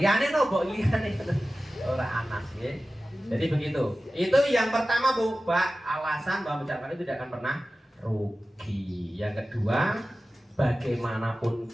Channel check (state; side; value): normal; both; correlation 0.95